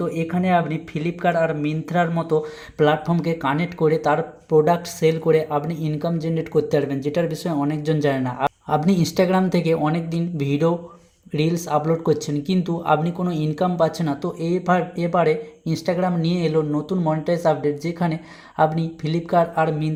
এখানে আপনি ফ্লিপকার্ট আর মিন্ত্রার মতো প্ল্যাটফর্মকে কানেক্ট করে তার প্রোডাক্ট সেল করে আপনি ইনকাম জেনারেট করতে পারবেন, যেটার বিষয়ে অনেকজন জানে না। আপনি ইনস্টাগ্রাম থেকে অনেক দিন ভিডিও রিলস আপলোড করছেন কিন্তু আপনি কোনো ইনকাম পাচ্ছেন না, তো এবারে ইনস্টাগ্রাম নিয়ে এলো নতুন মনিটাইজ আপডেট, যেখানে আপনি ফ্লিপকার্ট আর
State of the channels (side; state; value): both; identical; correlation 1.00